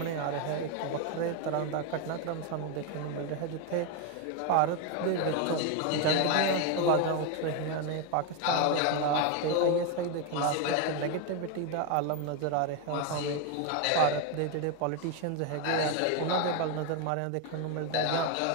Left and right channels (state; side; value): different; both; correlation 0.02